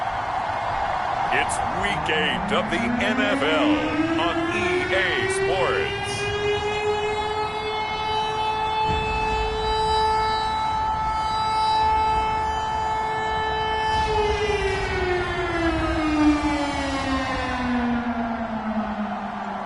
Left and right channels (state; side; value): identical; both; correlation 1.00